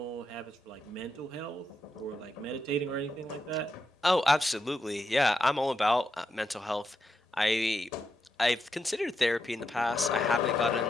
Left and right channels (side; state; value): both; normal; correlation 0.85